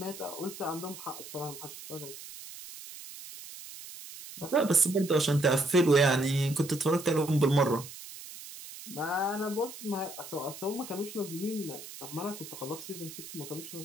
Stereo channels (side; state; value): right; noise; hiss, 13 dB below the sound